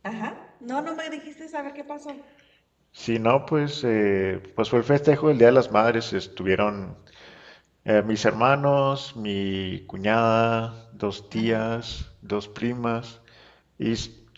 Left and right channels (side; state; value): both; identical; correlation 1.00